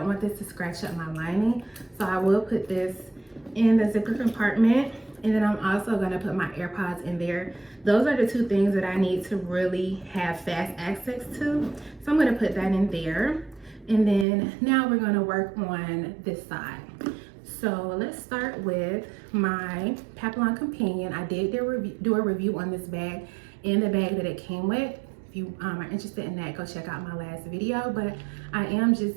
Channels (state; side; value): drops out; left; at 14.2 s